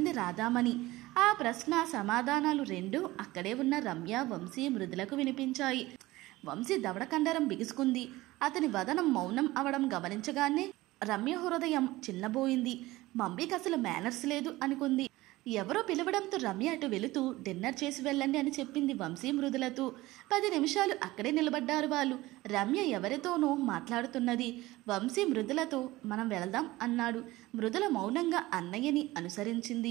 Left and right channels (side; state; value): left; quieter; 18.7 dB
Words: రాధామణి. ఆ ప్రశ్న సమాధానాలు రెండూ అక్కడే ఉన్న రమ్య, వంశీ, మృదులకు వినిపించాయి. వంశీ దవడకండరం బిగుసుకుంది. అతని వదనం మౌనం అవడం గమనించగానే రమ్య హృదయం చిన్నబోయింది. మమ్మీకి అసలు మేనర్స్ లేదు అనుకుంది. ఎవరో పిలవడంతో రమ్య అటు వెళుతూ, డిన్నర్ చేసి వెళ్ళండి అని చెప్పింది వంశీ మృదులతో. 10 నిమిషాలు అక్కడే నిలబడ్డారు వాళ్ళు. రమ్య ఎవరితోనో మాట్లాడుతున్నది. వంశీ మృదులతో, మనం వెళదాం అన్నాడు. మృదుల మౌనంగా అన్నయ్యని